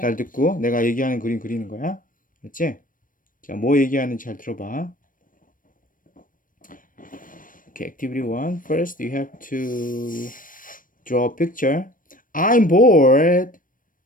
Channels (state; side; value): late; right; 0.40 ms